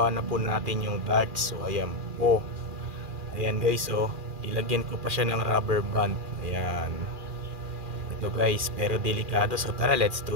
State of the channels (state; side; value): late; left; 2.4 ms